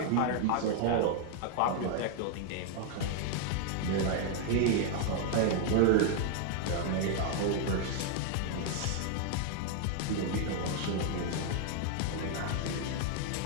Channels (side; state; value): both; different; correlation 0.00